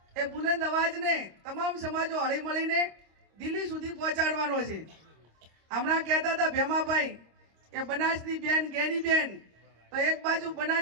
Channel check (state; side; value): late; left; 26 ms